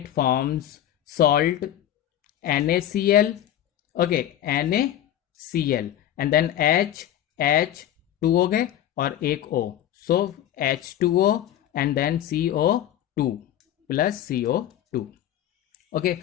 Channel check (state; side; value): quieter; right; 11.7 dB